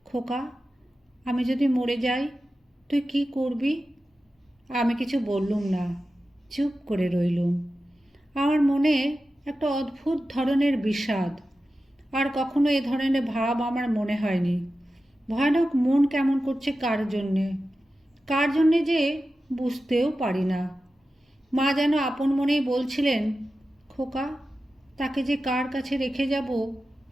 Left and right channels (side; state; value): both; normal; correlation 0.93